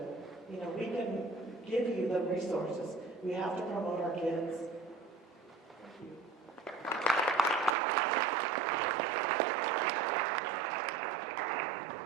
We can give you the resources. We have to promote our kids.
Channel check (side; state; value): left; drops out; at 7.8 s